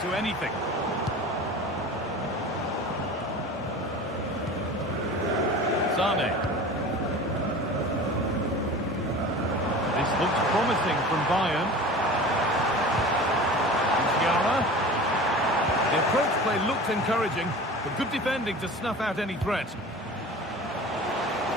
to anything. Sane. This looks promising from Bayern. Musiala. The approach play looked encouraging. But good defending to snuff out any threat.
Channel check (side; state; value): both; normal; correlation 0.37